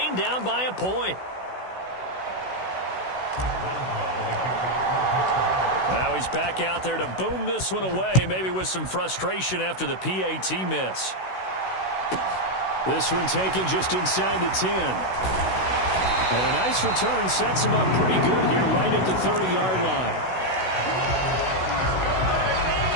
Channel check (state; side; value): late; right; 16 ms